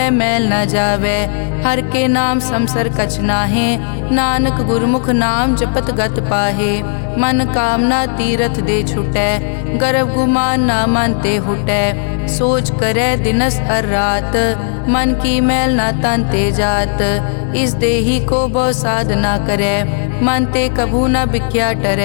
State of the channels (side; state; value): right; silent; digital silence